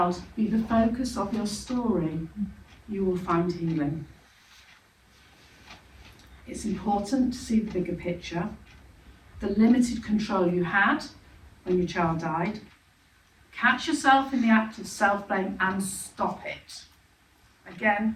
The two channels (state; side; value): identical; both; correlation 1.00